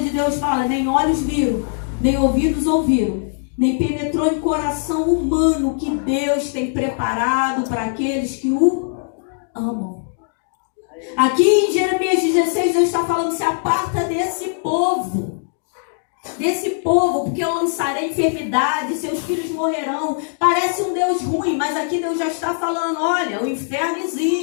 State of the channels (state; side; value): silent; right; digital silence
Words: Deus fala: nem olhos viram, nem ouvidos ouviram, nem penetrou em coração humano o que Deus tem preparado para aqueles que o amam. Aqui em Jeremias 16, Deus está falando: se aparta desse povo, porque eu lançarei enfermidade, seus filhos morrerão. Parece um Deus ruim, mas aqui Deus já está falando: olha, o inferno